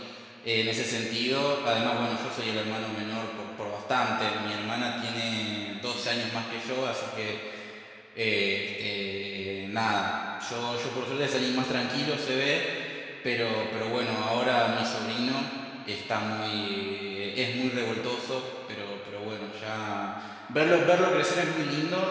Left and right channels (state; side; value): identical; both; correlation 1.00